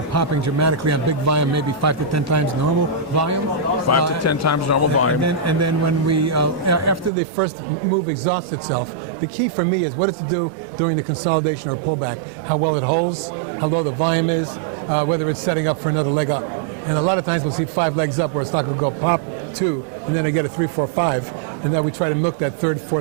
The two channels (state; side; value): drops out; left; at 7.1 s